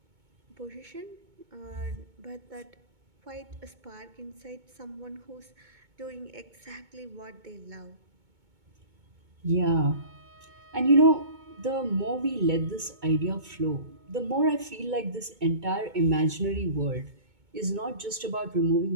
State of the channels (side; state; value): left; late; 2.2 ms